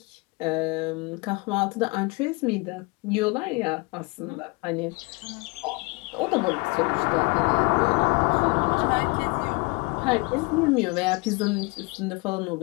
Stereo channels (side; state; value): right; quieter; 27.9 dB